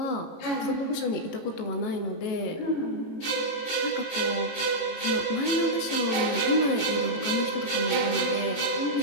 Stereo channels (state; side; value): late; right; 18 ms